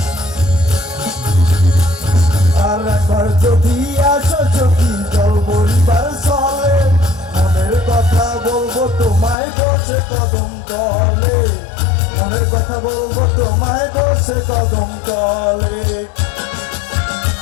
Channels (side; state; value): right; drops out; at 9.3 s